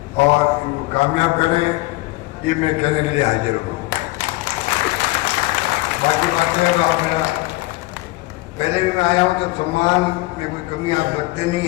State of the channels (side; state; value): right; quieter; 20.7 dB